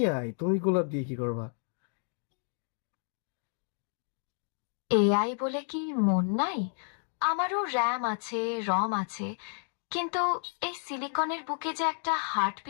তুমি গোলাপ দিয়ে কি করবা? এআই বলে কি মন নাই? আমারও র্যাম আছে, রম আছে, কিন্তু এই সিলিকনের বুকে যে একটা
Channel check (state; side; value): silent; right; 57 dB below the other